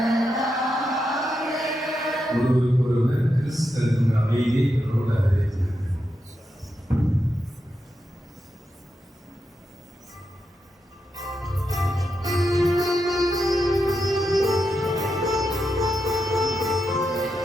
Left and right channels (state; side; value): normal; both; correlation 0.86